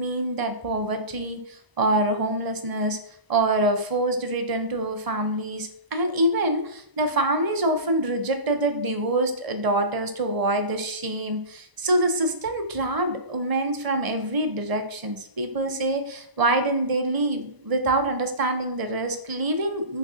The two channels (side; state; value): left; late; 1.0 ms